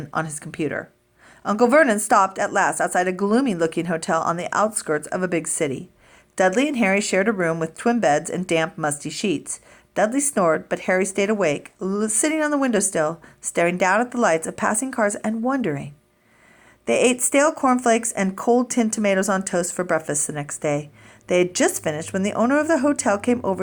on his computer. Uncle Vernon stopped at last outside a gloomy-looking hotel on the outskirts of a big city. Dudley and Harry shared a room with twin beds and damp, musty sheets. Dudley snored, but Harry stayed awake, sitting on the windowsill, staring down at the lights of passing cars and wondering. They ate stale cornflakes and cold tinned tomatoes on toast for breakfast the next day. They had just finished when the owner of the hotel came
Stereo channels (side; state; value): both; identical; correlation 1.00